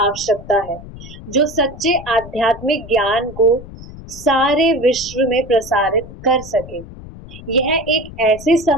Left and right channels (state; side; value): noise; left; rumble, 15 dB below the sound